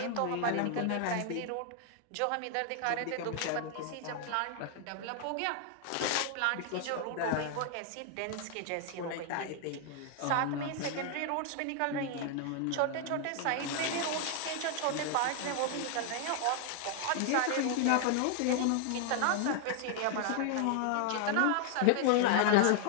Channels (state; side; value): different; both; correlation 0.00